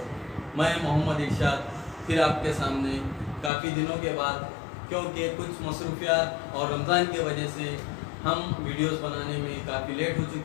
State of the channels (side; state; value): right; drops out; at 3.5 s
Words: मैं मोहम्मद इरशाद फिर आपके सामने काफ़ी दिनों के बाद, क्योंकि कुछ मसरूफियात और रमज़ान की वजह से हम वीडियोस बनाने में काफ़ी लेट हो